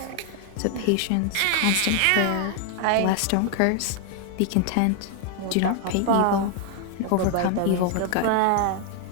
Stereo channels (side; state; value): both; different; correlation 0.00